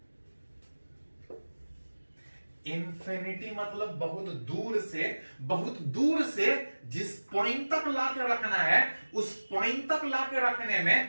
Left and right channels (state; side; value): inverted; both; correlation -1.00